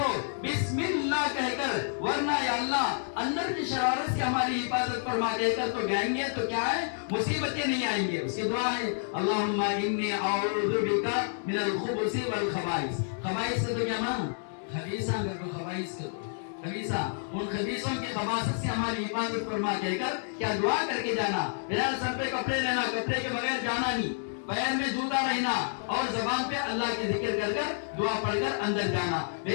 بسم اللہ کہہ کر، ورنہ یا اللہ اندر کی شرارت سے ہماری حفاظت فرما کہہ کر تو گائیں گے تو کیا ہے مصیبتیں نہیں آئیں گے۔ اس کی دعا ہے اللہم انی اعوذ بک من الخبث والخبائث۔ خبائث سے تو کیا ماں خبیثہ، اگر کو خبائث کو خبیثہ، ان خبیثوں کی خباثت سے ہماری حفاظت فرما کہہ کر کیا دعا کر کے جانا۔ بہرحال سر پہ کپڑے رہنا، کپڑے کے بغیر جانا نہیں، پیر میں جوتا رہنا، اور زبان پہ اللہ کی ذکر کر کر دعا پڑھ کر اندر جانا۔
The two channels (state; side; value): silent; right; digital silence